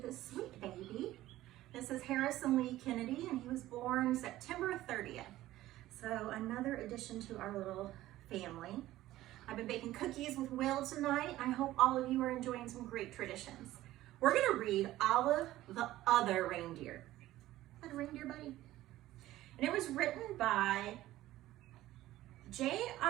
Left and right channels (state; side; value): quieter; left; 15.4 dB